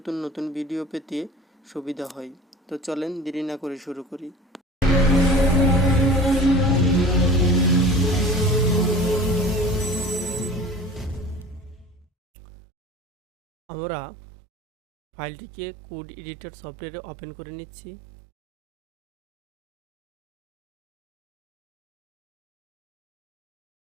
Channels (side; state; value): both; normal; correlation 0.41